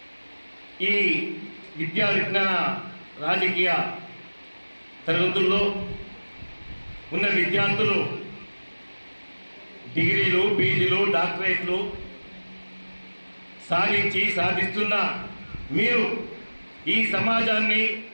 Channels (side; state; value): both; inverted; correlation -1.00